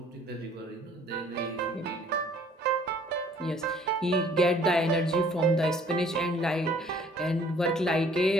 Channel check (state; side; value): normal; both; correlation 0.57